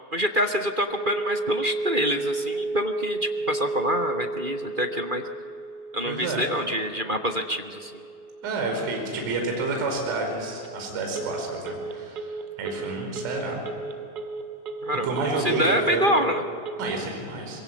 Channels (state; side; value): late; left; 2.4 ms